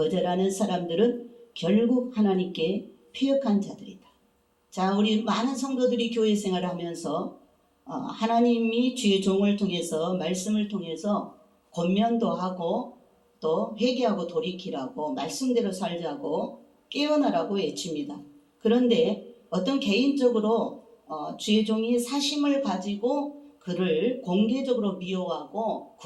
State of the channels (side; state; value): both; identical; correlation 1.00